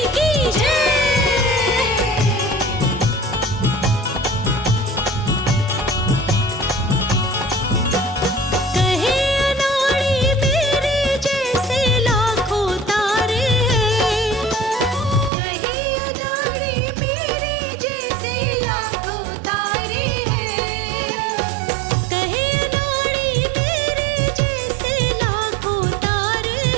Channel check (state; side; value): drops out; left; at 15.3 s